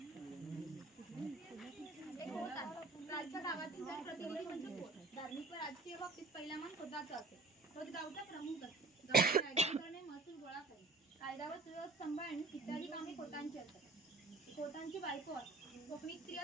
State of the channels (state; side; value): quieter; left; 3.3 dB